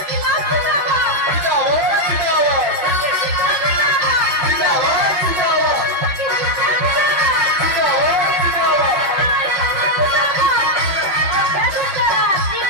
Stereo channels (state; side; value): late; left; 5.4 ms